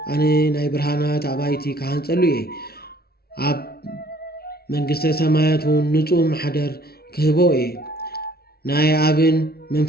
አነ ናይ ብርሃናት አባይቲ ካህን ጸልዩ አብ መንግስተ ሰማያት ንጹህ ማሕደር ክህቦ ናይ አብን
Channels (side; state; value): right; late; 0.45 ms